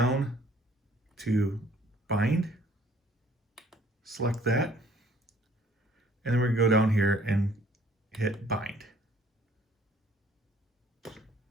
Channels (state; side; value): normal; both; correlation 0.58